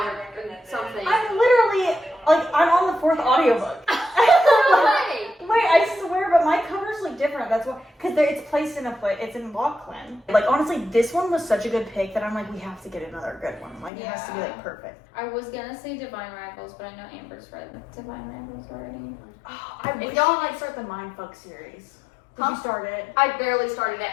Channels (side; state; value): right; drops out; at 13.9 s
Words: or something. I'm literally I'm on the fourth audiobook. Why? Wait, I swear, but my covers look different. That's why, because it's placed in it's in Lachlan. Like honestly, this one was such a good pick that I'm like, we have to get another good one. Like it has to be like perfect. I was gonna say Divine Rivals, but I know Amber's read Divine Rivals already. Oh, I wish y'all you could start the Mindfuck series. Did Huh? you start it? I barely started